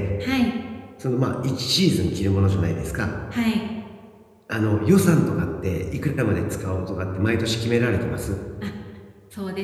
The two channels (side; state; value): both; identical; correlation 1.00